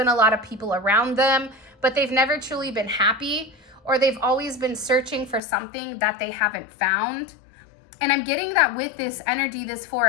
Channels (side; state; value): right; drops out; at 5.4 s